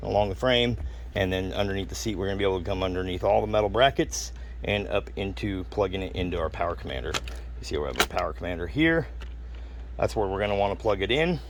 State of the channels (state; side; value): identical; both; correlation 1.00